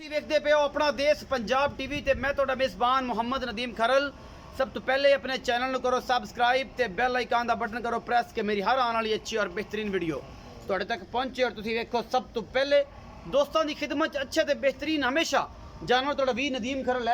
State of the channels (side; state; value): both; identical; correlation 1.00